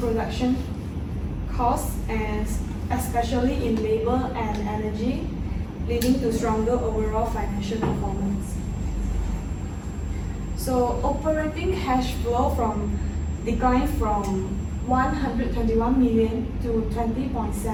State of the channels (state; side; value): identical; both; correlation 1.00